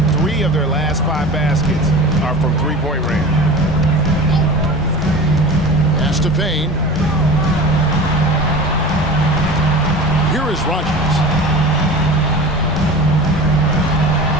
3 of their last 5 baskets are from three-point range. Pass to Payne. Here is Rogers.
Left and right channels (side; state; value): both; normal; correlation 0.35